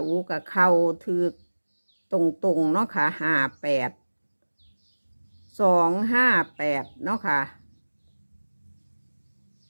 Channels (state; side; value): inverted; both; correlation -1.00